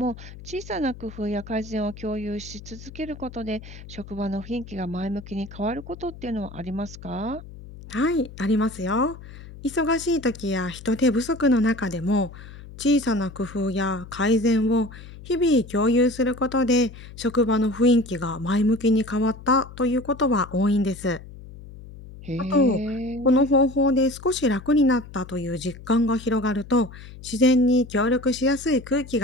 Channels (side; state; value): left; noise; hum, 16 dB below the sound